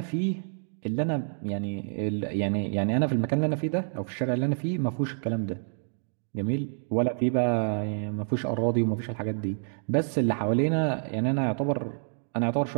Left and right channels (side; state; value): left; silent; digital silence